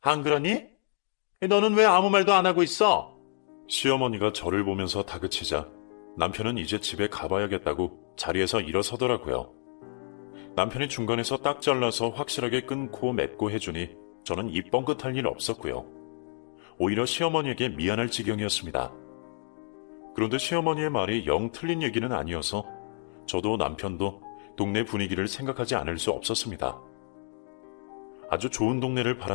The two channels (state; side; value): silent; right; digital silence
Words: 안 그러니? 너는 왜 아무 말도 안 하고 있어? 시어머니가 저를 보면서 다그치자 남편은 이제 집에 가봐야겠다고 자리에서 일어서더라고요. 남편이 중간에서 딱 잘라서 확실하게 끊고 맺고 해주니 저는 입 뻥긋할 일 없었고요. 오히려 시어머니에게 미안할 지경이었습니다. 그런데 시어머니의 말이 영 틀린 얘기는 아니어서 저도 남편도 동네 분위기를 생각하지 않을 수 없었습니다. 아주 좋은 동네를